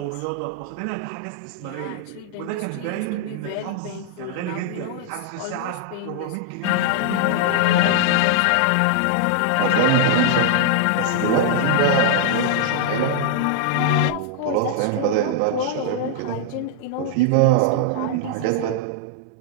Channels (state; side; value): different; both; correlation -0.01